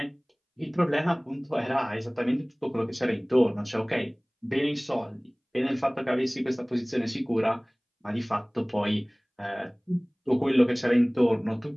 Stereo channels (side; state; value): both; identical; correlation 1.00